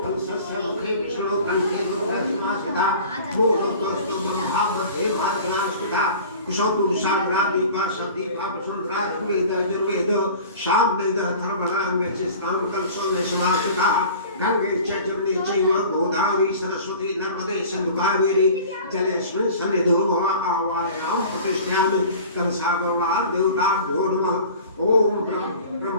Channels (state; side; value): inverted; both; correlation -0.42